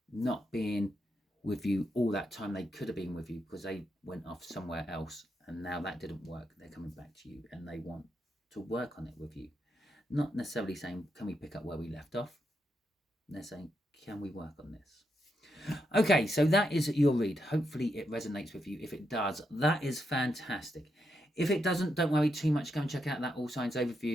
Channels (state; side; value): normal; both; correlation 0.82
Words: not being with you all that time they could have been with you because they went off somewhere else and now that didn't work. They're coming back to you and they want to work on it with you. Not necessarily saying, can we pick up where we left off? They're saying, can we work on this? Okay, so that is your read. Hopefully it resonates with you. If it does, that is fantastic. If it doesn't, don't worry too much. Go and check out that All Signs